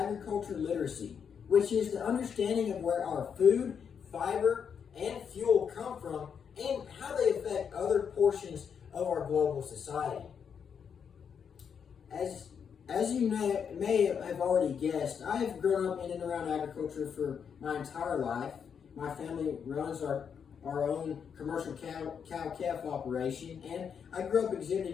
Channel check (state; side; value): quieter; right; 7.1 dB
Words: literacy, which is the understanding of where our food, fiber, and fuel come from and how they affect other portions of our global society. As you may have already guessed, I have grown up in and around agriculture for my entire life. My family runs our own commercial cow-calf operation, and I grew up